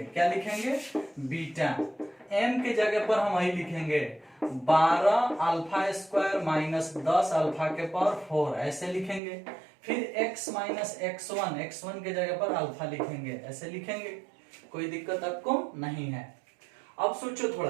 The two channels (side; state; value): left; drops out; at 9.2 s